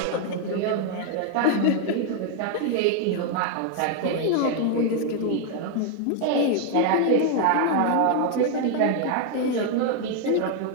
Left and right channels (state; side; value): different; both; correlation 0.01